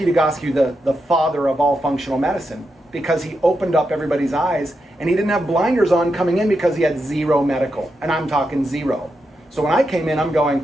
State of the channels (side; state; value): both; normal; correlation 0.85